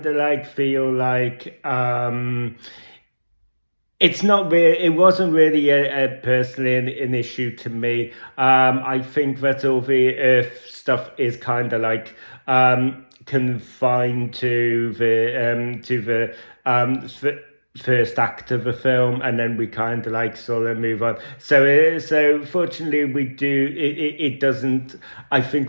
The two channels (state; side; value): inverted; both; correlation -1.00